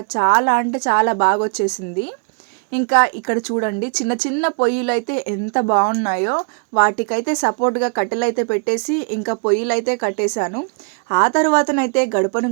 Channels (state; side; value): quieter; left; 39.4 dB